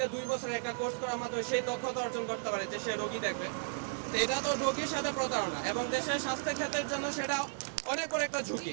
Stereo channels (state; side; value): silent; left; 55 dB below the other